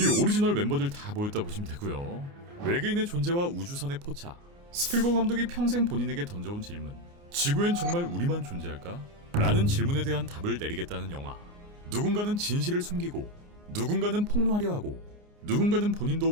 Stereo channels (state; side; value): late; left; 29 ms